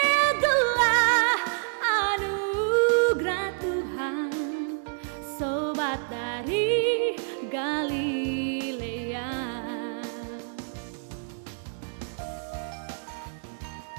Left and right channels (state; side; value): silent; left; digital silence